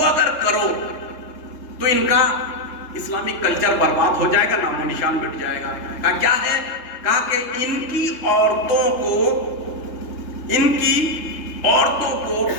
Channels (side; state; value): right; late; 3.3 ms